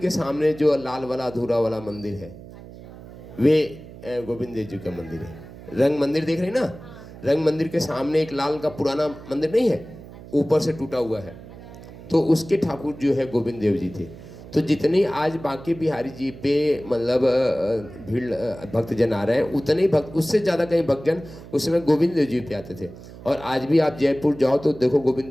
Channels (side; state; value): right; noise; hum, 16 dB below the sound